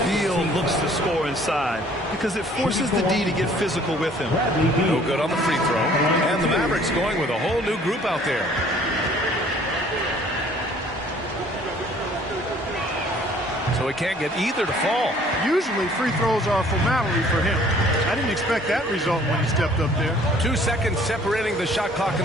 Beal looks to score inside because it forces the D to get physical with him. No good on the free throw. And the Mavericks going with a whole new group out there. So he can't get either to fall. Usually free throws are a formality for him. I didn't expect that result when he stepped up there. 2 seconds separating the shot clock and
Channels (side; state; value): both; normal; correlation 0.56